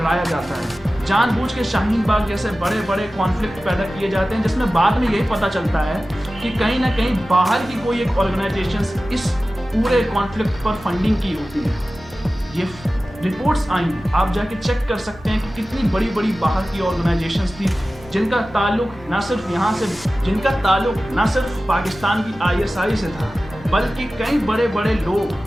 जाता है, जानबूझ के शाहीन बाग जैसे बड़े बड़े कॉन्फ्लिक्ट पैदा किए जाते हैं, जिसमें बाद में यही पता चलता है कि कहीं ना कहीं बाहर की कोई एक ऑर्गेनाइजेशन इस पूरे कॉन्फ्लिक्ट पर फंडिंग की होती है। ये रिपोर्ट्स आई हैं, आप जाके चेक कर सकते हैं कि कितनी बड़ी बड़ी बाहर की ऑर्गेनाइजेशंस थी जिनका ताल्लुक ना सिर्फ पाकिस्तान की ISI से था, बल्कि कई बड़े बड़े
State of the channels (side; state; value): both; normal; correlation 0.96